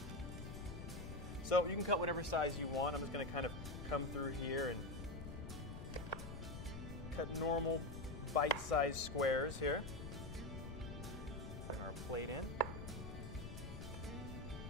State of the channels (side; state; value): left; noise; rumble, 8 dB below the sound